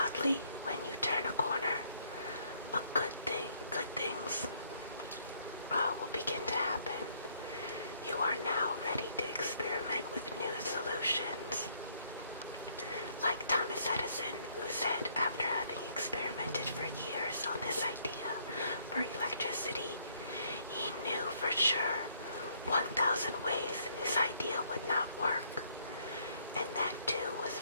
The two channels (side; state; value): both; inverted; correlation -0.68